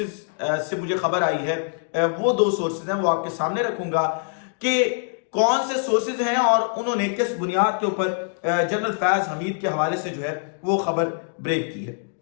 से मुझे खबर आई है, वो 2 सोर्सेज हैं, वो आपके सामने रखूंगा कि कौन से सोर्सेज हैं और उन्होंने किस बुनियाद के ऊपर जनरल फैज हमीद के हवाले से जो है वो खबर ब्रेक की है।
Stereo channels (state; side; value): silent; right; digital silence